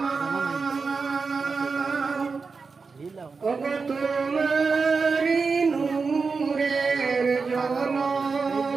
ওগো তোমারি নূরের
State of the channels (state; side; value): quieter; left; 4.7 dB